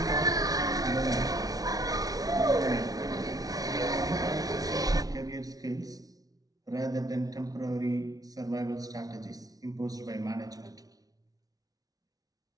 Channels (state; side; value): late; left; 0.18 ms